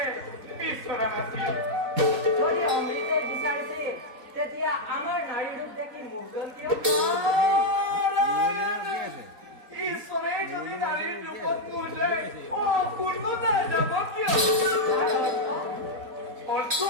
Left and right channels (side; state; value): left; late; 4.2 ms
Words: বিচৰা নাছিল। যদি অমৃতে বিচাৰিছিল তেতিয়া আমাৰ নাৰী ৰূপ দেখি মুগ্ধ কিয়? ঈশ্বৰে যদি নাৰীৰ ৰূপত মোলে অপূৰ্ণতা যাব কিয়? অৰ্থ